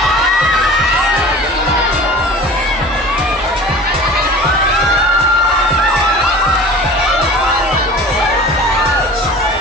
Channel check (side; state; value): both; normal; correlation 0.40